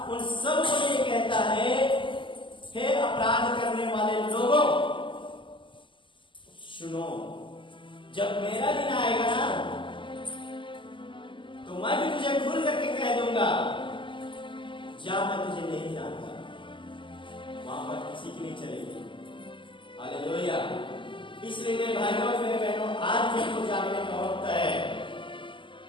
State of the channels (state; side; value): late; right; 0.24 ms